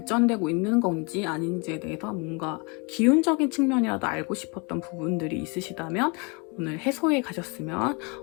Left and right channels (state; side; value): quieter; right; 31.6 dB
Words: 있는 건지 아닌지에 대해서 뭔가 기운적인 측면이라도 알고 싶었던 부분들이 있으시다면 오늘 해소해 가셨으면